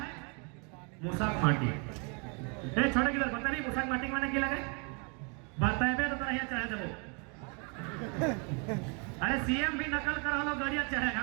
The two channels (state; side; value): quieter; left; 35.1 dB